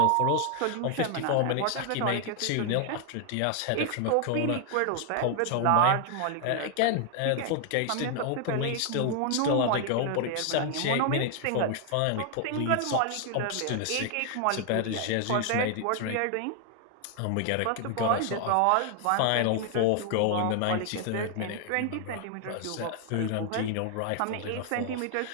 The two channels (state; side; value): different; both; correlation 0.00